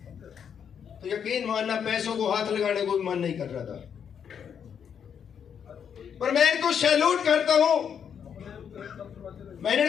तो यकीन मानना पैसों को हाथ लगाने को भी मन नहीं कर रहा था। पर मैं इनको सैल्यूट करता हूं। मैंने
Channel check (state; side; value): quieter; right; 7.8 dB